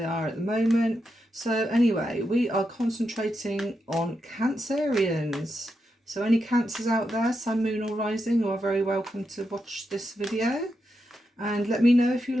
are at the moment. So anyway, we are concentrating on Cancerians. So any Cancers out there, Sun, Moon or Rising, you are very welcome to watch this video and let me know if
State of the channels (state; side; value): normal; both; correlation 0.85